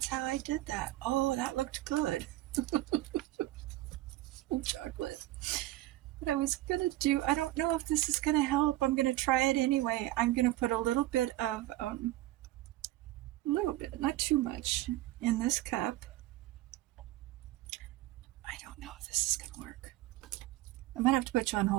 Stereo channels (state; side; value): quieter; left; 16.4 dB